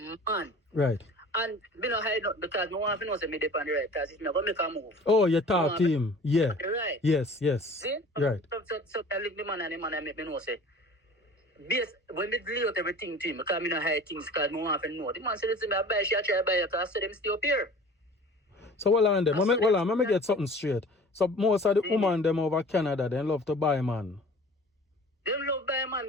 man. Right. And me not hide up because no one knows me depend on the right because if me go make a move. Oh, you talk to him. Yeah. Right. Yes. See? Right. So I leave the man and the man make me know say when me lay out everything to him, because me not hide things because no one know. The man said to me, I buy she I try to buy it because I said them stay up here. So hold on them. Let me get something straight. So most of the women them over Canada they love to buy man. They love buy man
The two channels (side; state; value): both; normal; correlation 0.45